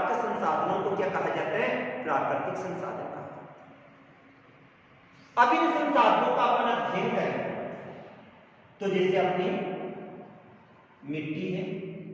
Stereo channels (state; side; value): identical; both; correlation 1.00